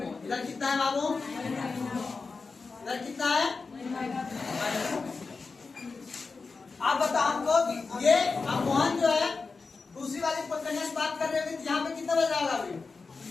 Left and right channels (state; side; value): quieter; right; 4.4 dB